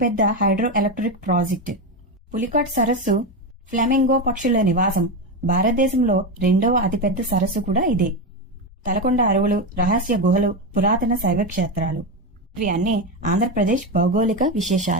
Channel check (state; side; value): normal; both; correlation 0.13